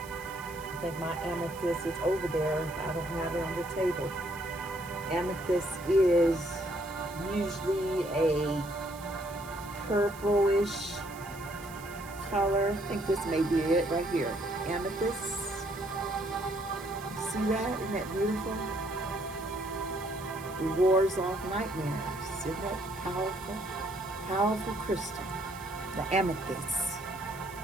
I think my amethyst is over there. I don't have it on the table. Amethyst is usually a purplish color. I think this may be it right here. Amethyst. See that? Isn't that beautiful? It wards off nightmares. Isn't that powerful? Powerful crystal. The amethyst.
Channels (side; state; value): right; noise; hiss, 18 dB below the sound